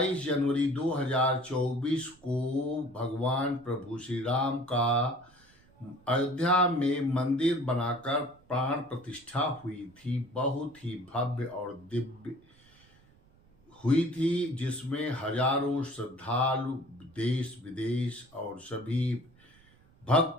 जनवरी 2024 को भगवान प्रभु श्री राम का अयोध्या में मंदिर बनाकर प्राण प्रतिष्ठा हुई थी। बहुत ही भव्य और दिव्य हुई थी, जिसमें हजारों श्रद्धालु देश विदेश और सभी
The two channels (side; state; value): right; noise; rumble, 29 dB below the sound